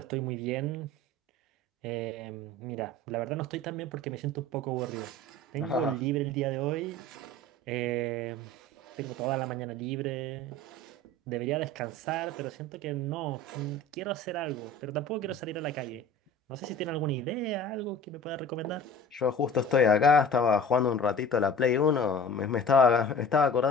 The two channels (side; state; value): both; normal; correlation 0.41